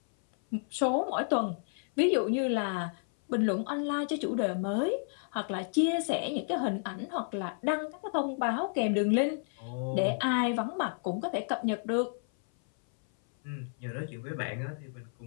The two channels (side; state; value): right; silent; 57 dB below the other